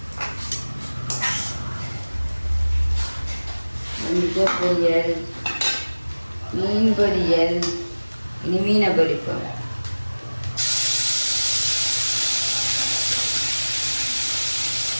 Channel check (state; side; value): inverted; both; correlation -1.00